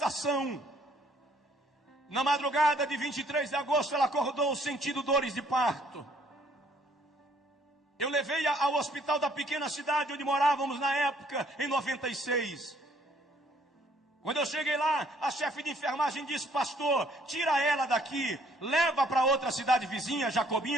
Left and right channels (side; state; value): both; normal; correlation 0.63